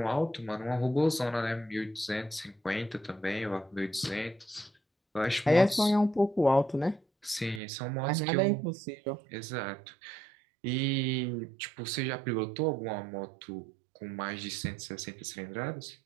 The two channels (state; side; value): drops out; left; at 7.6 s